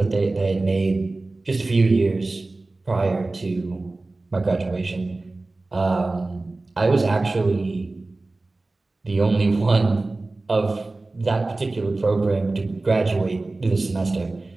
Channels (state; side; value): quieter; left; 3.2 dB